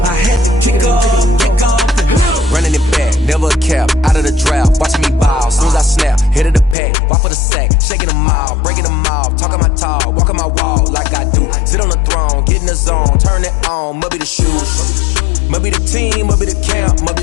I had to kick off and go. Running it back, never a cap, out of the draft, watching me ball. Soon as I snap, hit of the pack, walk for the sack, shaking them out, breaking them off, talking my talk, walking my wall like I do. Sit on the throne, get in the zone, turn it on, must be the shoes, must be the team, must be the camp, must be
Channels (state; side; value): drops out; right; at 6.8 s